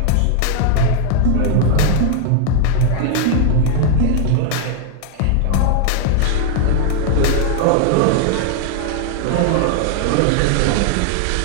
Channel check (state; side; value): different; both; correlation 0.00